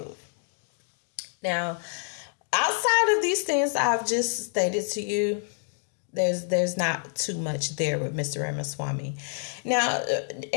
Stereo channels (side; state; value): right; silent; digital silence